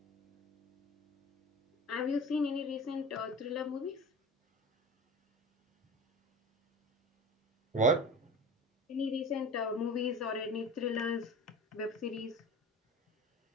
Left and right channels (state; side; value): normal; both; correlation 0.34